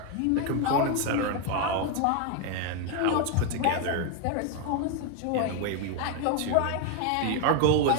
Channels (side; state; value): both; different; correlation 0.01